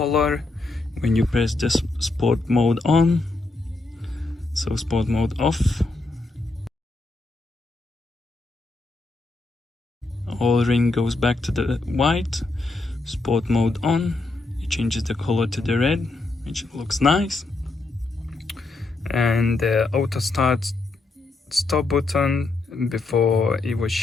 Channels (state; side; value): quieter; right; 3.2 dB